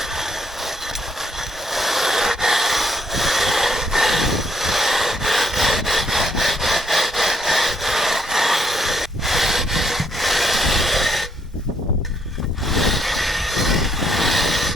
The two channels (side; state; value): both; normal; correlation 0.71